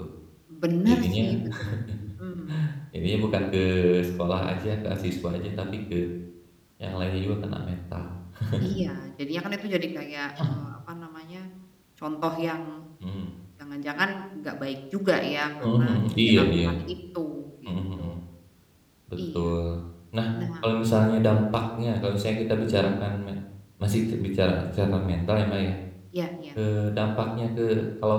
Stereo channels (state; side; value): identical; both; correlation 1.00